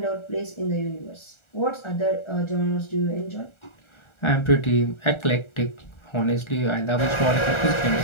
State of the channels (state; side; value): late; right; 1.4 ms